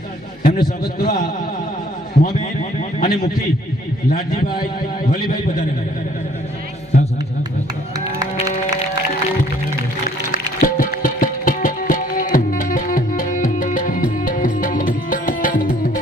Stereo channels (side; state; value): both; normal; correlation 0.60